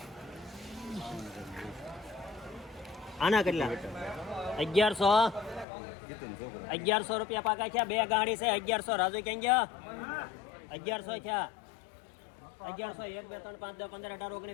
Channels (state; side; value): drops out; right; at 5.7 s